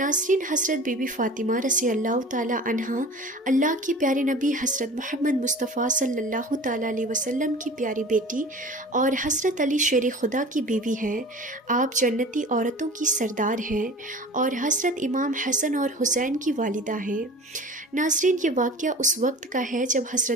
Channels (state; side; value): normal; both; correlation 0.39